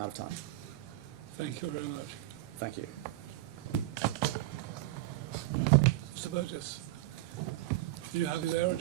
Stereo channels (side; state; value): left; quieter; 16.5 dB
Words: of time. Thank you very much. Thank you. Mr. Burgess, are you happy there or do